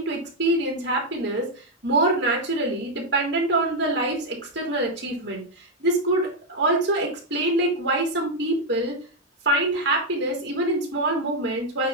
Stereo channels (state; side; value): normal; both; correlation 0.01